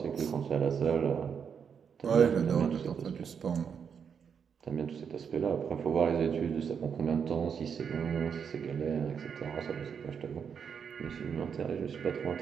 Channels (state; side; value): quieter; left; 7.0 dB